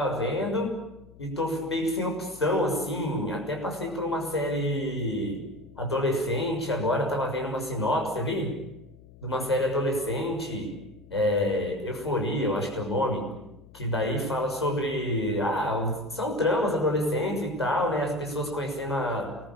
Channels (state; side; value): noise; left; hum, 22 dB below the sound